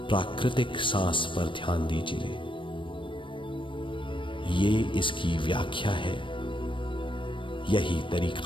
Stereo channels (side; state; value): right; late; 0.24 ms